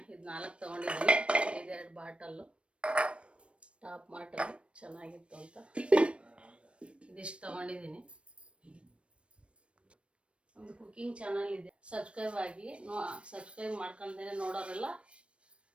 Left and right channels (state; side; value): late; left; 0.060 ms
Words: ಇದು 4 ತೊಗೊಂಡಿದ್ದೀನಿ. ಇದೆರಡು ಬಾಟಲ್ಲು ಟಾಪ್ ಮಾರ್ಟಲ್ಲಿ ಚೆನ್ನಾಗಿತ್ತು ಅಂತ ಇದಿಷ್ಟು ತೊಗೊಂಡಿದ್ದೀನಿ. ಒಂದು ಕುಕ್ಕಿಂಗ್ ಚಾನಲ್ ಇದೆ, ಸಬ್ಸ್ಕ್ರೈಬ್ ಆಗಿ. ಸಬ್ಸ್ಕ್ರೈಬ್ ಮಾಡ್ಕೊಂಡೇ ನೋಡೋರೆಲ್ಲ